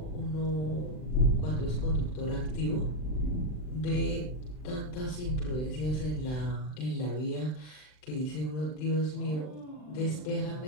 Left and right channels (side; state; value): right; late; 39 ms